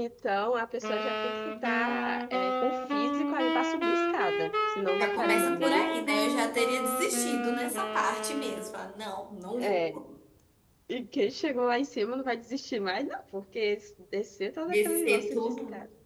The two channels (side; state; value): both; identical; correlation 1.00